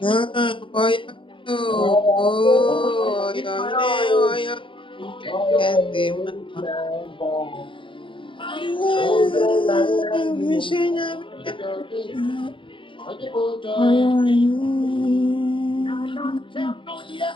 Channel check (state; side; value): late; right; 0.25 ms